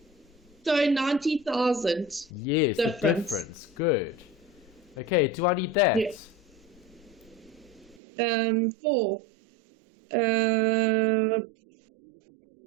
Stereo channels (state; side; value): drops out; left; at 8.0 s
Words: So 90,000. Yes, the difference. Good. Okay, do I need that? Yes. 4. For the valuation. Do I need it for the